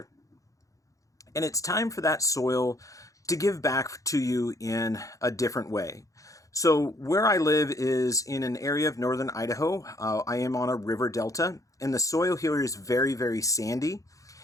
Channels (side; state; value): right; late; 0.16 ms